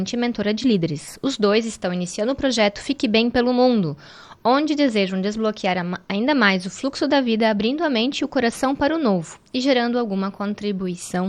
e mentora de líderes. Os dois estão iniciando o projeto Fique Bem pelo Mundo, onde desejam desbloquear ainda mais o fluxo da vida, abrindo a mente e o coração para o novo e gerando alguma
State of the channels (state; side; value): identical; both; correlation 1.00